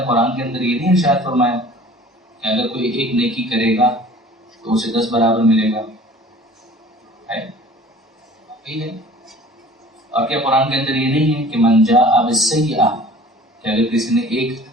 قرآن کے اندر یہ نہیں ارشاد فرمایا کہ اگر کوئی ایک نیکی کرے گا تو اسے 10 برابر ملے گا؟ ہے. اور کیا قرآن کے اندر یہ نہیں ہے کہ من جاء بالسیئۃ، کہ اگر کسی نے ایک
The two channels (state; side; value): normal; both; correlation 0.47